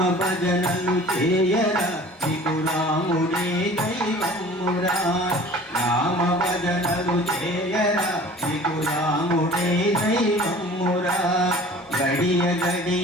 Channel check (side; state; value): both; normal; correlation 0.45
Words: భజనలు చేయరా నీకు రాముడే దైవమురా. రామ భజనలు చేయరా నీకు రాముడే దైవమురా. గడియ